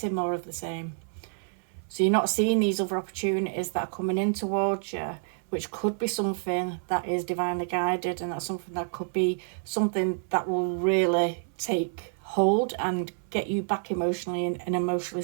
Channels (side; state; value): left; silent; 59 dB below the other